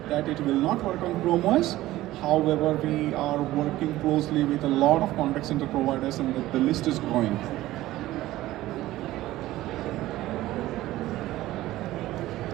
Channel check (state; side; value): quieter; left; 16.1 dB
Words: that it will not work on Chrome OS. However, we are working closely with a lot of contact center providers, and the list is growing.